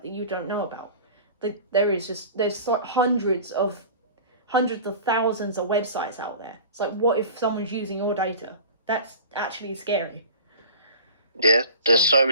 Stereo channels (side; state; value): both; inverted; correlation -0.39